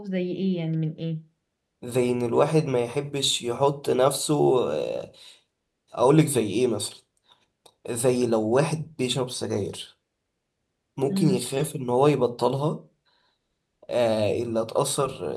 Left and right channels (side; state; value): both; identical; correlation 1.00